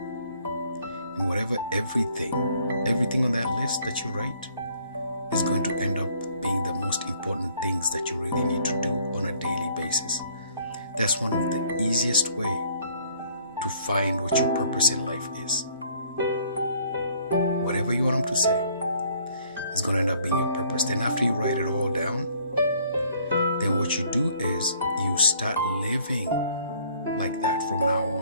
And whatever, everything on that list that you write is going to end up being the most important things that you really need to do on a daily basis. That's one of the easiest way to find what your purpose in life is. Whatever you want them to say is going to end up being your purpose. Then after you write it all down, then what you do is you start living like that from now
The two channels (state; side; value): inverted; both; correlation -0.61